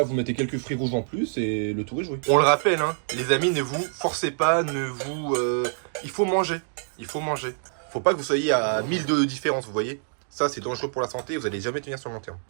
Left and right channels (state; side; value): silent; left; digital silence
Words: vous mettez quelques fruits rouges en plus et le tour est joué. On le rappelle, hein, les amis, ne vous forcez pas, il faut manger. Il faut manger. Faut pas que vous soyez à 1000 de différence, vous voyez. Ça, c'est dangereux pour la santé, vous allez jamais tenir sur le long terme.